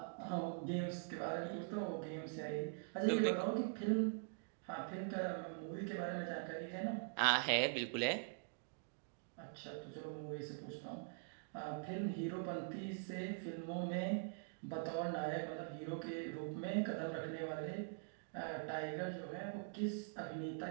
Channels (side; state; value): left; silent; digital silence